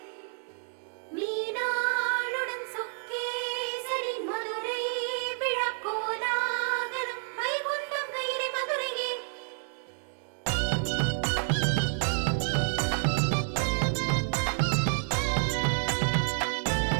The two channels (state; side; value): silent; left; 58 dB below the other